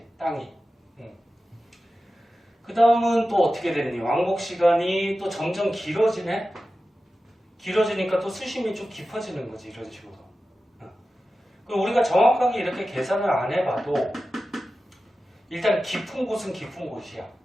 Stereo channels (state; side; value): normal; both; correlation 0.94